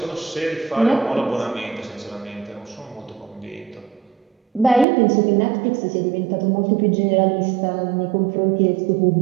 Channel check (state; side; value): drops out; left; at 4.9 s